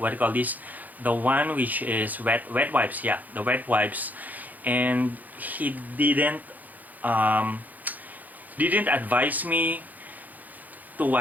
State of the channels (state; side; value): late; left; 0.082 ms